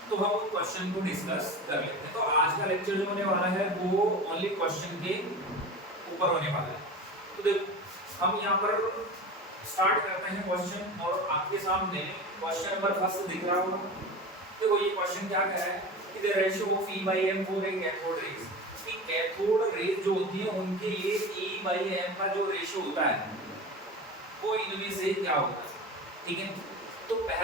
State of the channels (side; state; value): both; normal; correlation 0.31